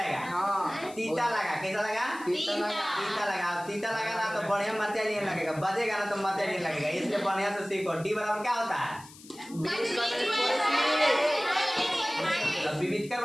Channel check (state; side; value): noise; left; hiss, 20 dB below the sound